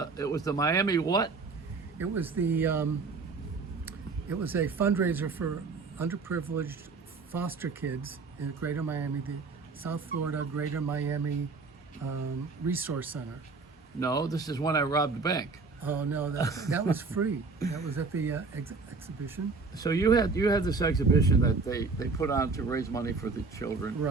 Miami what? It was the it was a fundraiser for underprivileged foster kids in Greater Miami, the South Florida Greater Miami Resource Center. No, this is when I robbed the bank. Oh no, that was free. That was at the exhibition. So you had this exhibition that they put on to raise money for the children.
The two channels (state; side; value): quieter; left; 4.2 dB